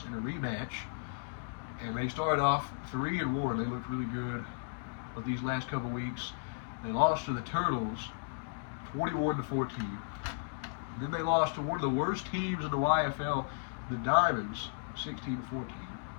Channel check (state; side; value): silent; right; digital silence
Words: in a rematch, and they started off 3-1. They looked really good, but these last couple weeks, they lost to the Turtles, 21-14. And then they lost to one of the worst teams in the YFL, the Diamonds, 16-14.